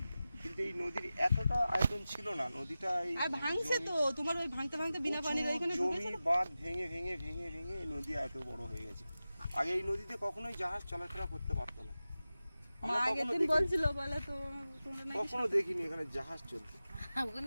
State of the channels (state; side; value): inverted; both; correlation -0.94